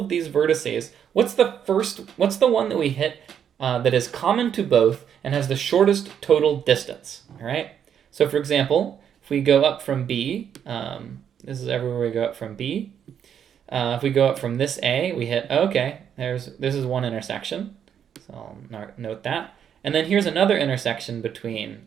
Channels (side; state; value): left; quieter; 8.6 dB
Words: these vertices, what's the one that we hit that is common to both and has the shortest total distance? All right. So for example, if we go up from B, this is everywhere we go up from B. If we go up from this A, we hit, okay, this is one intersection. So I'll note that. And then here's another intersection between